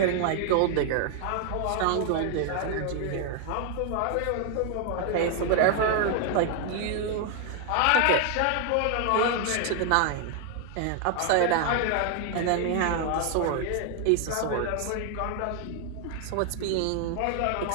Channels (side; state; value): both; different; correlation 0.00